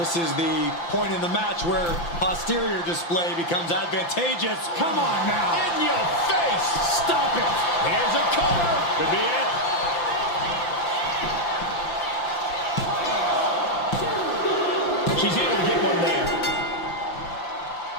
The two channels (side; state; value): right; late; 5.9 ms